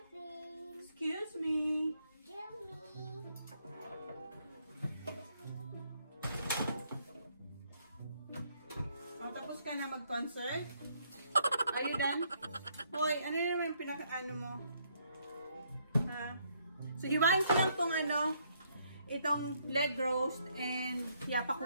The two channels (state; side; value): inverted; both; correlation -0.71